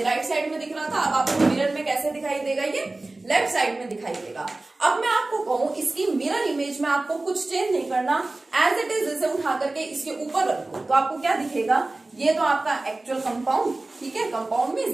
राइट साइड में दिख रहा था, अब आपको मिरर में कैसे दिखाई देगा? ये लेफ्ट साइड में दिखाई देगा। अब मैं आपको कहूं इसकी मिरर इमेज में आपको कुछ चेंज नहीं करना, एज इट इज इसे उठा करके इसके ऊपर रख दो, तो आपको क्या दिखेगा? ये तो आपका एक्चुअल कंपाउंड, ठीक है, कंपाउंड में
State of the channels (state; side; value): quieter; left; 3.0 dB